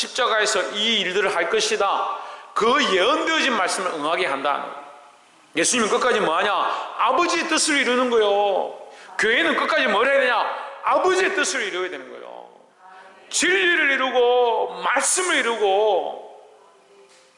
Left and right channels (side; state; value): both; identical; correlation 1.00